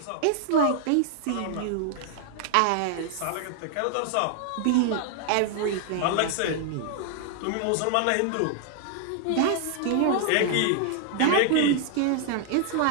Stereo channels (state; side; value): different; both; correlation 0.00